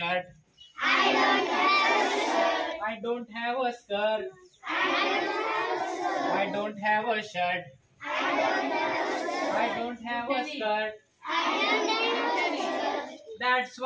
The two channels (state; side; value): identical; both; correlation 1.00